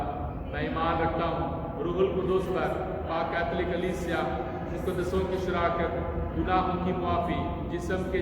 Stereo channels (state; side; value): identical; both; correlation 1.00